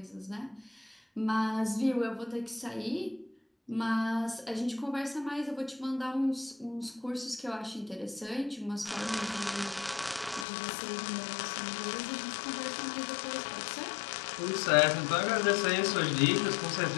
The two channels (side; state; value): right; drops out; at 10.5 s